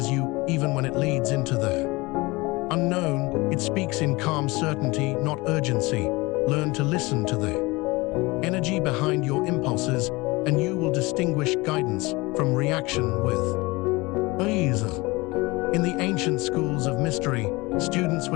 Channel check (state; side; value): quieter; right; 23.3 dB